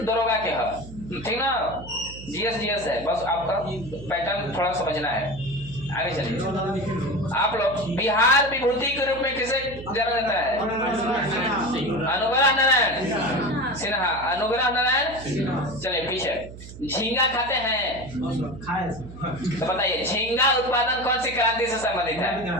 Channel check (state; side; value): noise; right; hum, 14 dB below the sound